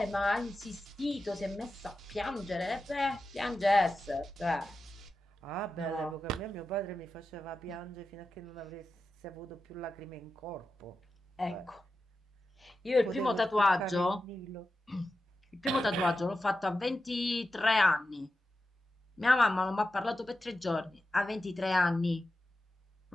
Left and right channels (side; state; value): both; normal; correlation 0.91